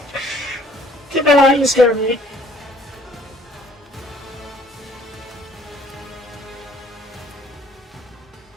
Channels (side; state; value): both; normal; correlation 0.57